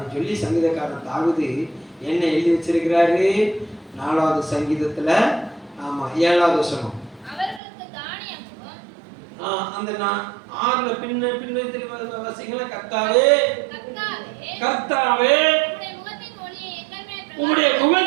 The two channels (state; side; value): drops out; left; at 7.6 s